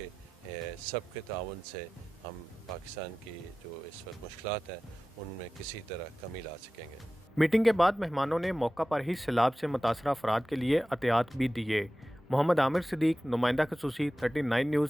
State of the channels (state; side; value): normal; both; correlation 0.95